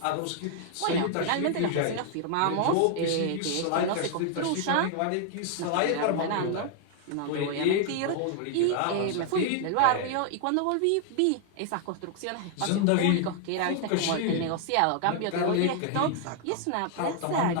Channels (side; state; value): both; different; correlation 0.00